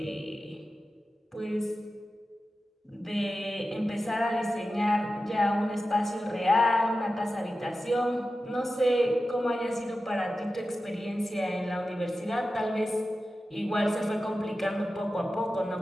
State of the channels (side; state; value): both; normal; correlation 0.93